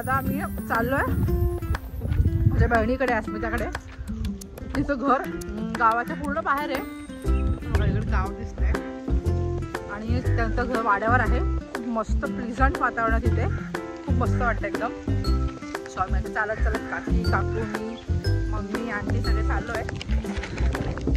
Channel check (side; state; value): both; identical; correlation 1.00